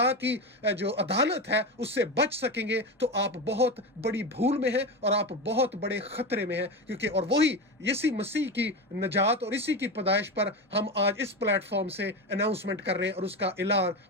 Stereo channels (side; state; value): both; normal; correlation 0.20